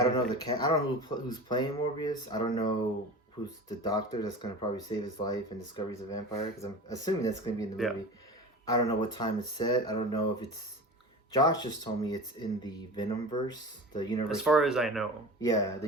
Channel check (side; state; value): both; normal; correlation 0.33